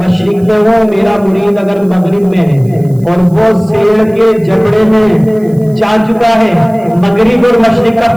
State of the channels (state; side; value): noise; right; hiss, 28 dB below the sound